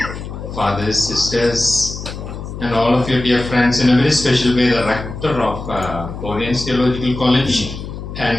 fathers, sisters, and all of your dear friends, in a very special way, the rector of Oriens Theological College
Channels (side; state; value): left; noise; hum, 9 dB below the sound